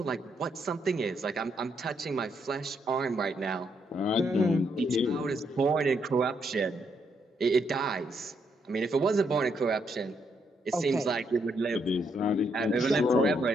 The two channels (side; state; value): both; normal; correlation 0.76